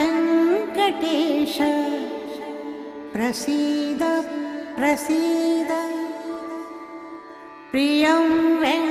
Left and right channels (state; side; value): identical; both; correlation 1.00